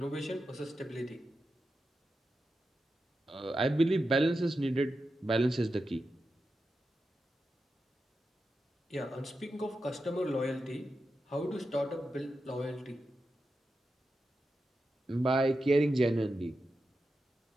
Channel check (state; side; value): normal; both; correlation 0.89